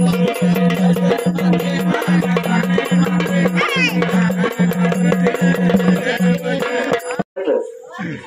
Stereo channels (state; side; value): identical; both; correlation 1.00